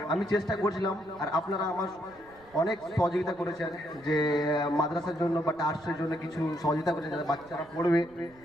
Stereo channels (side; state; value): right; noise; rumble, 27 dB below the sound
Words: আমি চেষ্টা করছিলাম, আর আপনারা আমার অনেক সহযোগিতা করেছেন, যে মাদ্রাসার জন্য বা ট্রাস্টের জন্য কিছু সহযোগিতা করেছেন যাতে বাচ্চারা পড়বে,